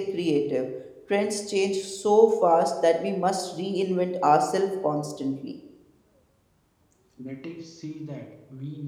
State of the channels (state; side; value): identical; both; correlation 1.00